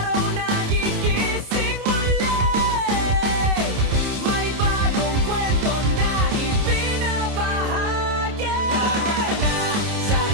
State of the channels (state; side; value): late; left; 29 ms